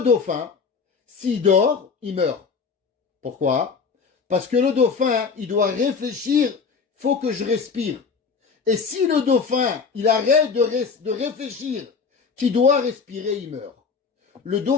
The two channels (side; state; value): right; quieter; 5.3 dB